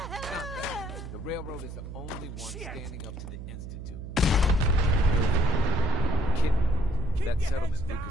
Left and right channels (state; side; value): noise; right; hum, 10 dB below the sound